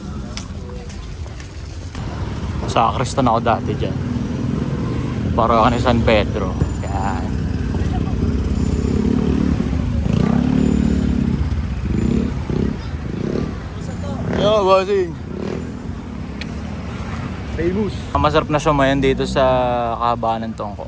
Sa Kristan ako dati dyan. Para ako ni San Pedro. Yan. Yo, bossing. Famous. Masarap na sumayan dito sa kahabaan ng Tungko.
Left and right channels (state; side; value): identical; both; correlation 1.00